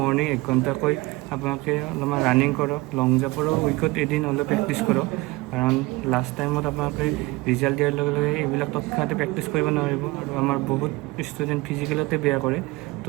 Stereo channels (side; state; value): left; quieter; 22.0 dB